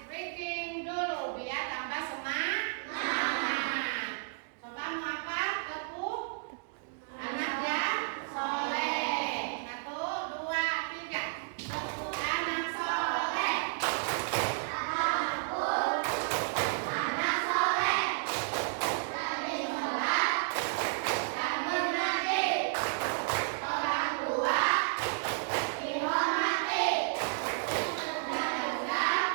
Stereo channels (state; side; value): silent; left; digital silence